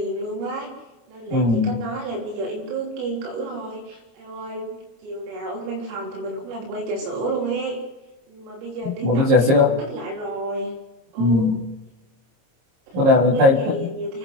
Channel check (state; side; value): late; left; 26 ms